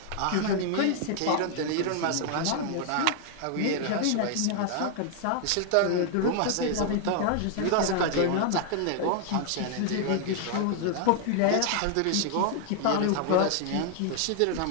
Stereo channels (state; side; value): different; both; correlation 0.00